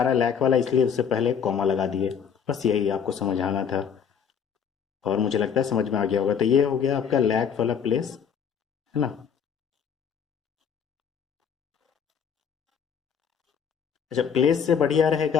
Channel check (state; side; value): quieter; right; 7.3 dB